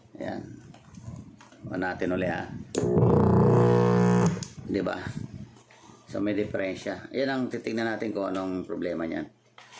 Ayan. O natin ulit diba? So may diferensya. Yan ang titignan natin kung anong problema niyan.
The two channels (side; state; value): both; identical; correlation 1.00